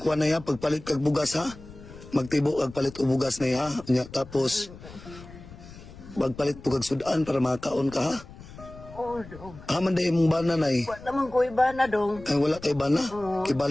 kuha na ya pagpalit kag bugas ha. Magtibo kag palit og bugas na ya. Nya tapos magpalit po kag sudan para makaon ka ha. Oh, Dong. Haman day mong bana Nay. Wa naman ko iba na, Dong. Ay wala kay bana.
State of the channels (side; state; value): left; noise; rumble, 17 dB below the sound